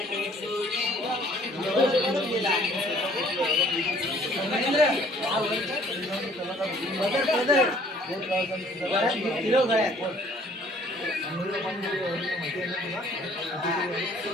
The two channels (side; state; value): both; normal; correlation 0.57